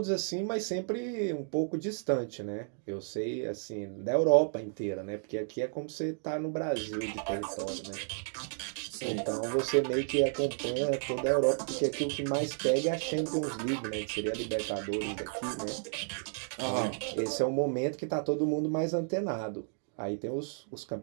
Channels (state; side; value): silent; left; digital silence